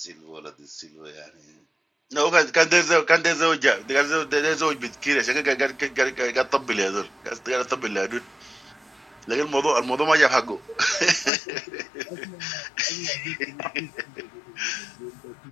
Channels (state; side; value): drops out; right; at 11.3 s